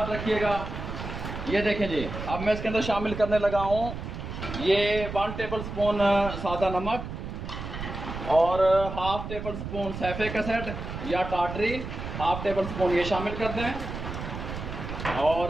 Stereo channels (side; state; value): right; noise; rumble, 7 dB below the sound